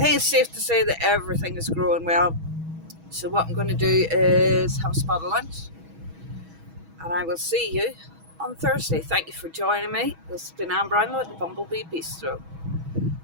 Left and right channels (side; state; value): left; late; 6.2 ms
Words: think it's safe to say that everything is growing well. So what I'm going to do is have a spot of lunch, and I will see you on Thursday. Thank you for joining me. This has been Anne Brownlow at the Bumblebee Bistro.